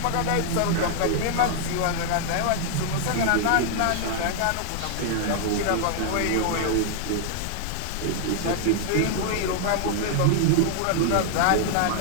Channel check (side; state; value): both; different; correlation 0.00